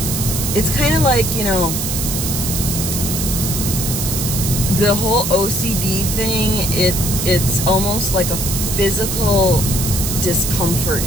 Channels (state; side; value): noise; right; hiss, 2 dB below the sound